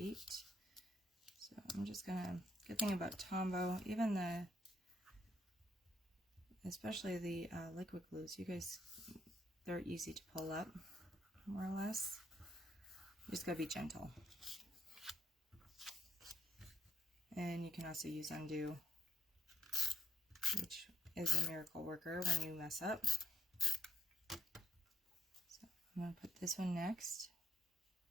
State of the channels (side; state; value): both; normal; correlation 0.73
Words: So I'm just gonna, good thing about Tombow, even especially the liquid glues, you guys, they're easy to pull up, more or less. You just gotta be gentle. And you can also use undo, which is a miracle worker when you mess up. So I'm gonna put this one next.